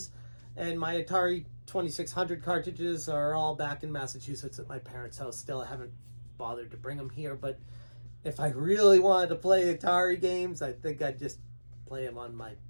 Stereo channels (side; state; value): both; inverted; correlation -1.00